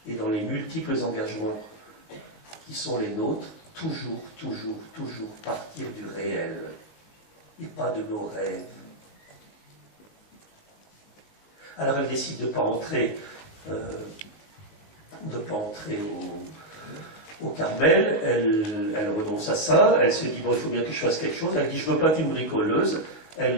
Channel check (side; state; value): right; late; 19 ms